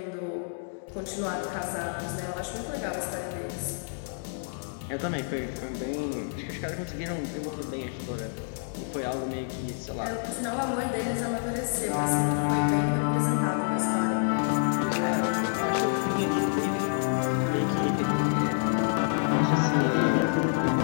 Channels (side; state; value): right; silent; digital silence